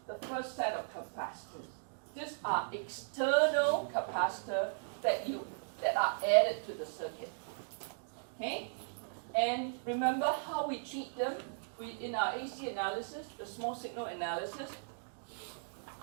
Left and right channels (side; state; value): left; silent; digital silence